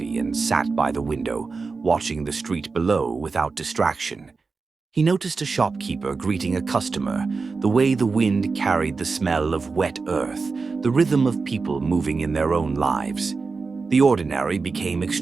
and sat by the window, watching the street below without distraction. He noticed a shopkeeper greeting a customer, the way the wind carried the smell of wet earth, the rhythm of people moving in their own lives. The ordinary became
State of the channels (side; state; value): left; quieter; 4.4 dB